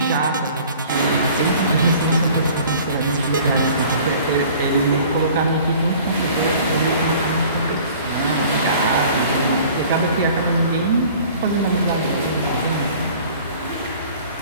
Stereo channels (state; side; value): inverted; both; correlation -0.49